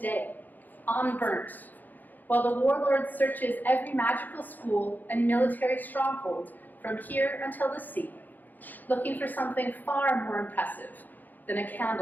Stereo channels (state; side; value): late; right; 0.085 ms